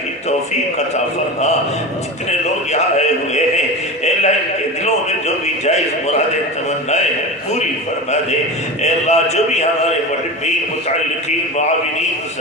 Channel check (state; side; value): normal; both; correlation 0.27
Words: کی توفیق عطا فرما۔ جتنے لوگ یہاں آئے ہوئے ہیں اے اللہ ان کے دلوں میں جو بھی جائز مرادیں تمنائیں ہیں پوری فرما دے۔ اے اللہ جو بھی ہمارے محبین متعلقین معاونین